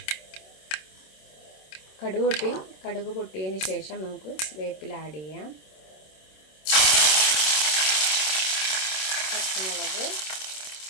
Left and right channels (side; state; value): right; late; 27 ms